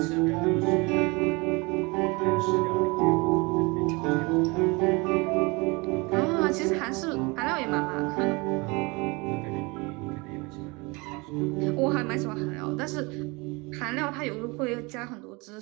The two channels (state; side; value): quieter; left; 26.7 dB